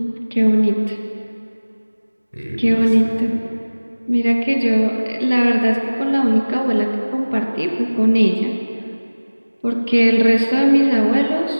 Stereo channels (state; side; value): inverted; both; correlation -1.00